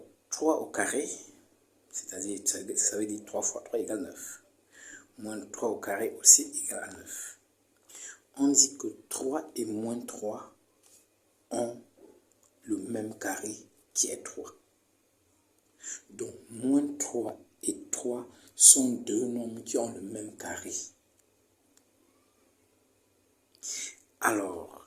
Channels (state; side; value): identical; both; correlation 1.00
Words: 3 au carré, c'est-à-dire ça veut dire 3 fois 3 égale 9. Moins 3 au carré aussi égale à 9. On dit que 3 et moins 3 ont le même carré qui est 3. Donc, moins 3 et 3 sont deux nombres qui ont le même carré.